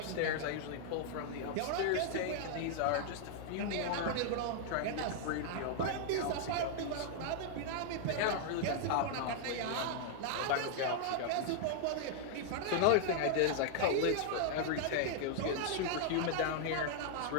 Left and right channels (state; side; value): different; both; correlation -0.01